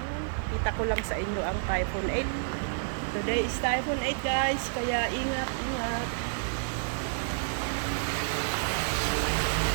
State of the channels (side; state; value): left; silent; 58 dB below the other